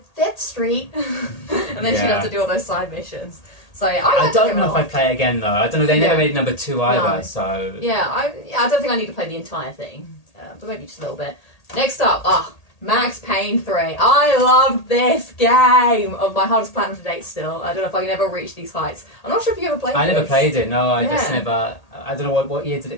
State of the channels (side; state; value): right; late; 1.8 ms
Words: 5th Street, and then she'd have to do all those side missions. So yeah, I don't know if I'd play it again though. I don't know. They never made number 2 either. No. So I don't think I need to play the entire thing. But maybe just a little bit. Next up, Max Payne 3. I loved this game. My hardest platinum to date still. I don't know if I can ever reach these heights. I'm not sure if you ever played it. I never played it, no. I just never... I don't know, what year did